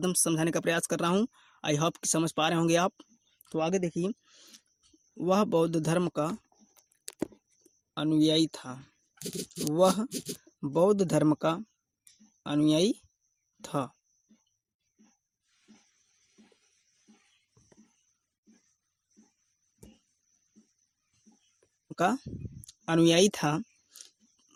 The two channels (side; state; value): both; identical; correlation 1.00